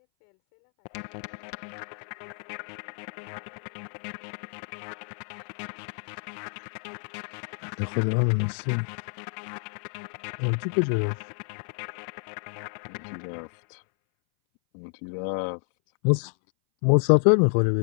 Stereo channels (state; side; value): silent; right; 58 dB below the other